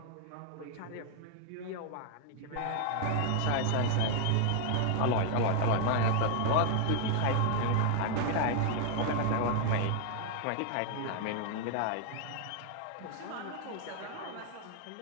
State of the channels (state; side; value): different; both; correlation 0.00